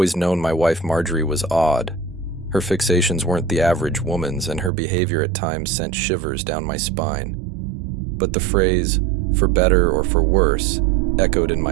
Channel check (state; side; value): drops out; left; at 4.7 s